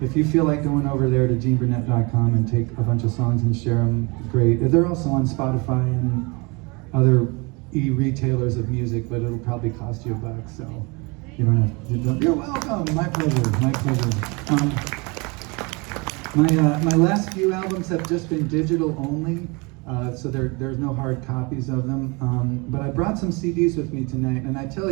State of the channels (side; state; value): left; quieter; 28.4 dB